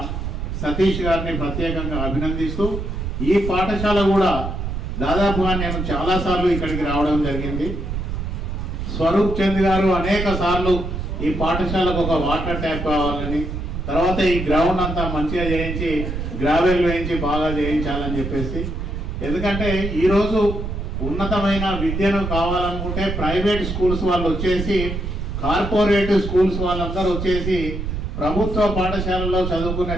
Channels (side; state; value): right; noise; rumble, 4 dB below the sound